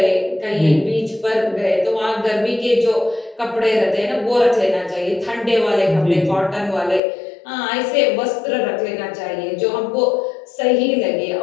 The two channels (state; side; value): drops out; right; at 7.0 s